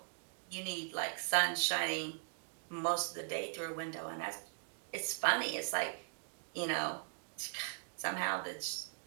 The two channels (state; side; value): silent; left; 51 dB below the other